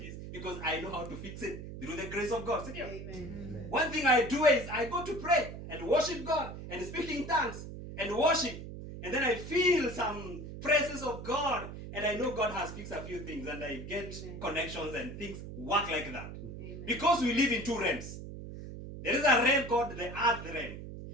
because I know how to fix it through the grace of God. Amen. Amen. One thing I do is I go to pray and worship God and speak in tongues and worship. And then I feel some presence of God, and I know God has fixed a few things, and I get connections and things work like that. Amen. Because we live in two realms. There is a realm called the earth realm,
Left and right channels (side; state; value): right; noise; hum, 10 dB below the sound